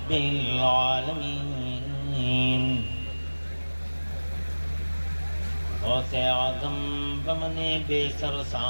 العالمين غوث اعظم بمن بے سر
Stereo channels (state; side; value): inverted; both; correlation -1.00